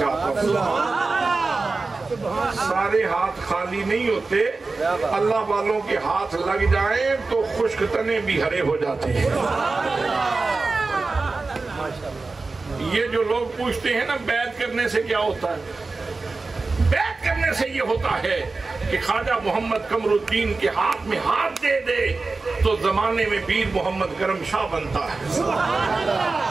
ہوں، سارے ہاتھ خالی نہیں ہوتے، اللہ والوں کے ہاتھ لگ جائیں تو خشک تنے بھی ہرے ہو جاتے ہیں۔ یہ جو لوگ پوچھتے ہیں نا بیعت کرنے سے کیا ہوتا ہے، بیعت کرنے سے یہ ہوتا ہے کہ خواجہ محمد قمر الدین کے ہاتھ میں ہاتھ دے دے تو زمانے میں پیر محمد کرم شاہ بنتا ہے،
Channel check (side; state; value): left; quieter; 3.8 dB